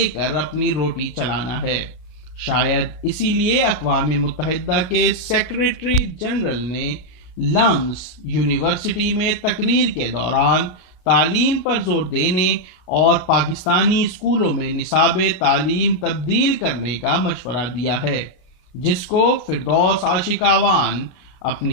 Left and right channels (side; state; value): right; late; 33 ms